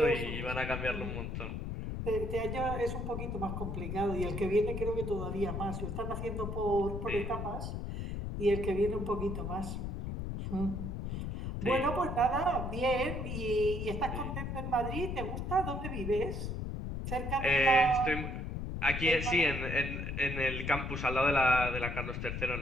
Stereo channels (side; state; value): left; noise; rumble, 4 dB below the sound